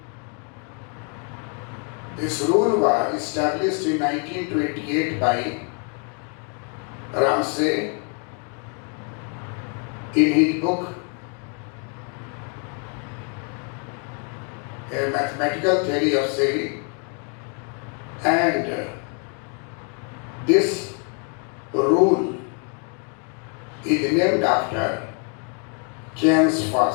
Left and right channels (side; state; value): right; quieter; 39.5 dB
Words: This rule was established in 1928 by Ramsey in his book A Mathematical Theory of Saving, and this rule is named after Keynes